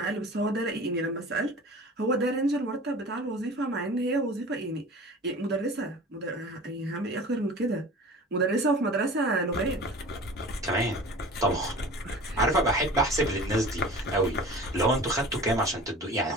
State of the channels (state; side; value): normal; both; correlation 0.40